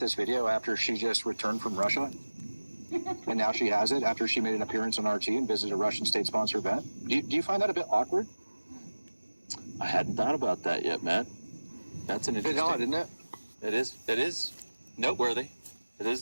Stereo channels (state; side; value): inverted; both; correlation -1.00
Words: video after she just returned from Russia? And now she has it after she made an appearance on RT and visited a Russian state-sponsored event? Do you find that a bit awkward? I hadn't thought about that yet, Matt. That's an A bit interesting... odd, isn't it? It is noteworthy. It